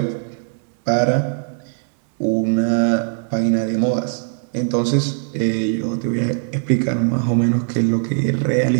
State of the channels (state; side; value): silent; left; digital silence